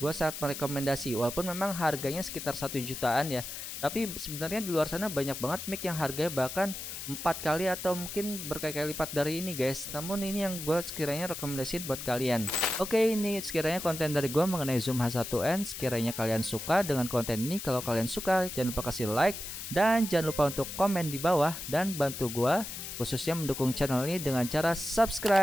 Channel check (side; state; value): left; noise; hiss, 8 dB below the sound